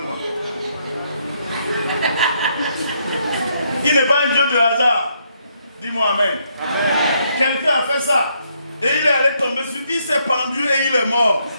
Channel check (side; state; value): both; inverted; correlation -0.74